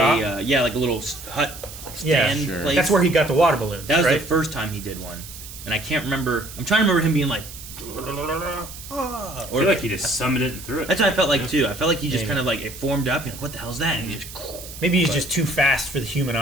like a little hut Yeah, stand sure. place. That's where he got the water balloons. That was right? the first time he did one, and I can't remember. I'm trying to remember him being like, I feel like he just summoned it and threw it. that's what I felt like too. I felt like he just Maybe. kind of like it formed up, and like, what the hell's that? And he just Maybe he's just too fast for the human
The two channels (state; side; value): noise; right; hiss, 14 dB below the sound